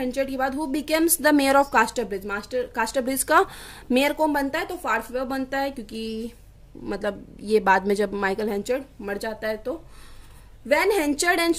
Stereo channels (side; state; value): both; identical; correlation 1.00